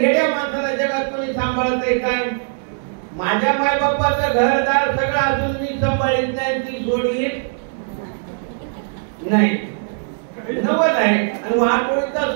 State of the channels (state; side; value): silent; left; digital silence